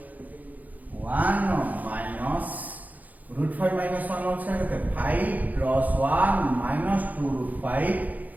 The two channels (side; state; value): left; late; 0.079 ms